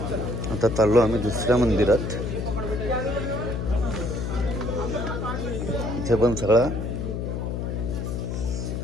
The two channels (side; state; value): left; noise; hum, 3 dB below the sound